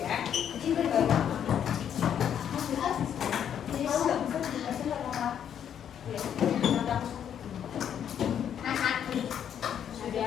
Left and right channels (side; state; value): right; quieter; 9.1 dB